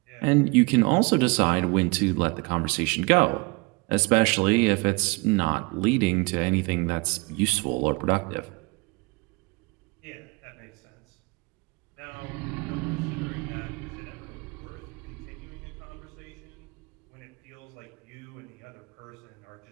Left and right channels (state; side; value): quieter; left; 27.8 dB